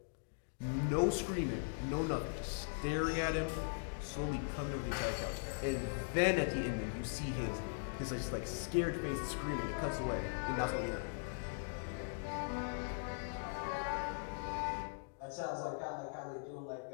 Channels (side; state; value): right; silent; digital silence